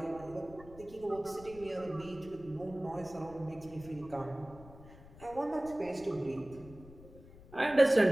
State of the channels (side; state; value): left; noise; rumble, 19 dB below the sound